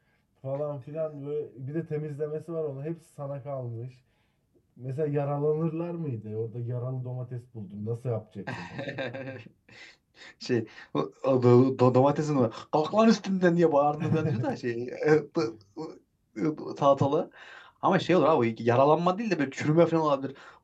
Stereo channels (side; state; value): both; identical; correlation 1.00